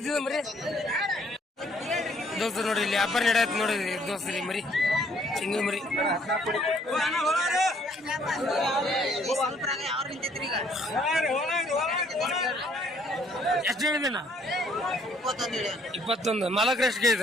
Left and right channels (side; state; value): both; normal; correlation 0.64